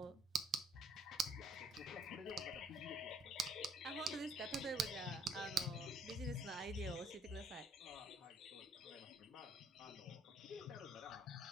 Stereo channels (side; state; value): both; normal; correlation 0.62